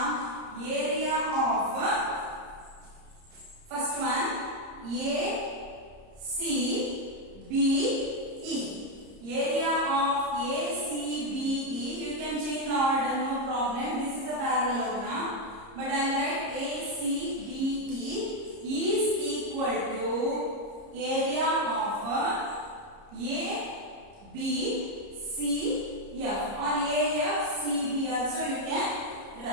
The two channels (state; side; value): late; left; 30 ms